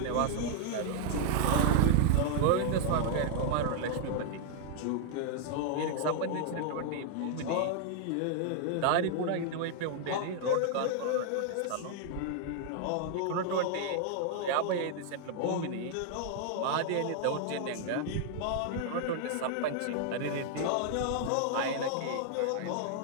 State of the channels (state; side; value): different; both; correlation 0.00